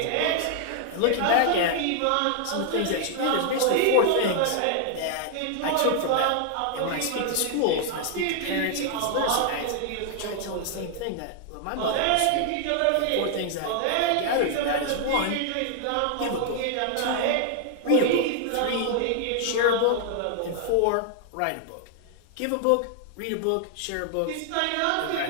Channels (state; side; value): different; both; correlation 0.00